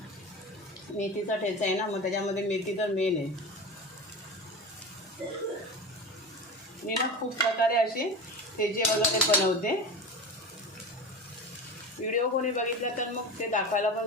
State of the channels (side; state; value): both; normal; correlation 0.28